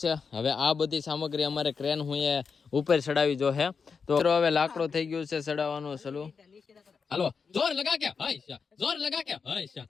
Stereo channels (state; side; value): quieter; right; 5.5 dB